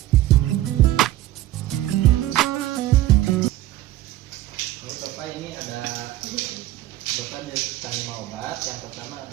Ini ada Bapak diberikan 5 obat. Yang pertama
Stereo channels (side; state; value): left; quieter; 14.8 dB